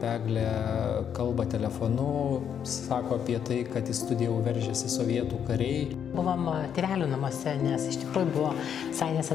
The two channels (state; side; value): quieter; right; 8.4 dB